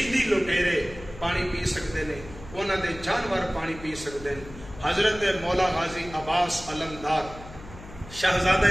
لٹیرے پانی پی سکتے ہیں، انہاں دے جانور پانی پی سکتے ہیں۔ حضرت مولا غازی عباس علمدار شہزادہ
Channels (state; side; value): noise; left; hum, 16 dB below the sound